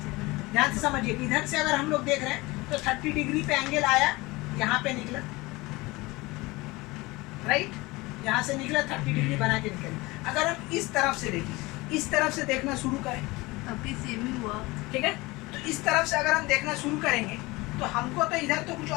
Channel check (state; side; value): quieter; right; 22.2 dB